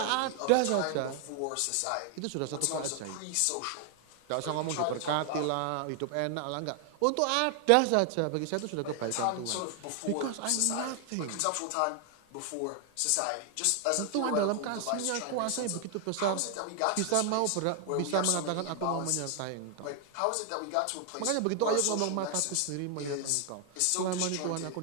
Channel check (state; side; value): different; both; correlation 0.00